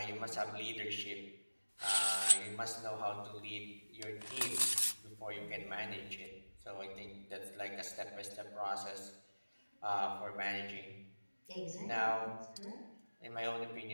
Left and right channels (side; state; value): both; inverted; correlation -1.00